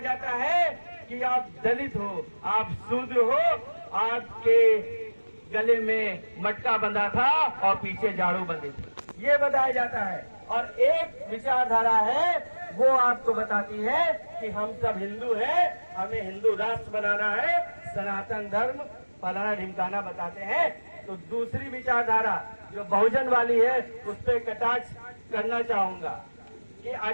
है कि आप दलित हो, आप शूद्र हो, आपके गले में मटका बंधा था और पीछे झाड़ू बंधी थी, ये बताया जाता है। और एक विचारधारा है वो आपको बताती है कि हम सब हिंदू हैं, हमें हिंदू राष्ट्र बनाना है, सनातन धर्म फलाना ढिमकाना बताते हैं। तो दूसरी विचारधारा जो बहुजन वाली है उस पर कटाक्ष करना चाहूंगा कि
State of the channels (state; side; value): inverted; both; correlation -1.00